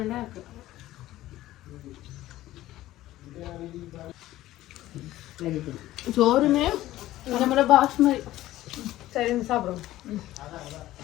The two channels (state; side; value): quieter; right; 15.3 dB